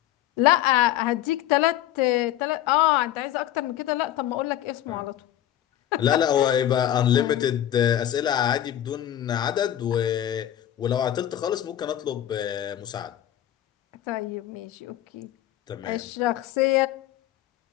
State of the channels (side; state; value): right; quieter; 12.1 dB